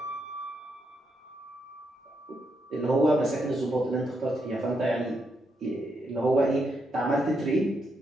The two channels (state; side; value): normal; both; correlation 0.80